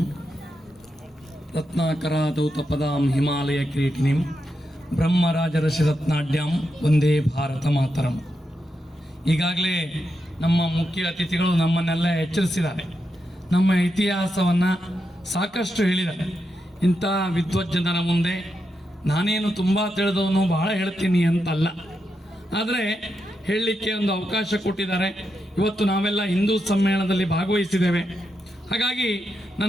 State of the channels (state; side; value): normal; both; correlation 0.85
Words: ರತ್ನಾಕರಾದೌತಪದಾಂ ಹಿಮಾಲಯ ಕಿರೀಟಿನಿಂ ಬ್ರಹ್ಮರಾಜರಸಿರತ್ನಾಢ್ಯಾಂ ವಂದೇ ಭಾರತ ಮಾತರಂ. ಈಗಾಗಲೇ ನಮ್ಮ ಮುಖ್ಯ ಅತಿಥಿಗಳು ನಮ್ಮನ್ನೆಲ್ಲ ಎಚ್ಚರಿಸಿದ್ದಾರೆ. ನಮ್ಮ ಇತಿಹಾಸವನ್ನು ಸಾಕಷ್ಟು ಹೇಳಿದ್ದಾರೆ. ಇಂಥ ವಿದ್ವಜ್ಜನರ ಮುಂದೆ ನಾನೇನು ತುಂಬ ತಿಳಿದವನು ಬಹಳ ಹೇಳ್ತೀನಿ ಅಂತಲ್ಲ, ಆದರೆ ಹೇಳಲಿಕ್ಕೆ ಒಂದು ಅವಕಾಶ ಕೊಟ್ಟಿದ್ದಾರೆ. ಇವತ್ತು ನಾವೆಲ್ಲ ಹಿಂದೂ ಸಮ್ಮೇಳನದಲ್ಲಿ ಭಾಗವಹಿಸಿದ್ದೇವೆ. ಹಾಗಾಗಿ